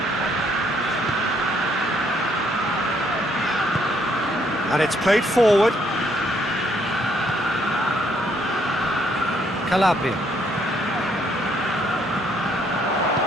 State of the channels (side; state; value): both; normal; correlation 0.69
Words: And it's played forward. Calabria.